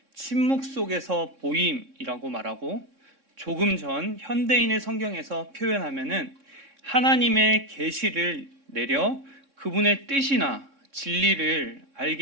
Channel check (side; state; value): left; late; 3.6 ms